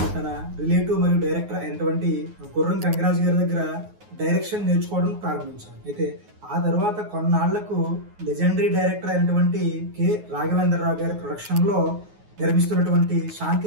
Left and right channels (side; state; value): left; late; 9.5 ms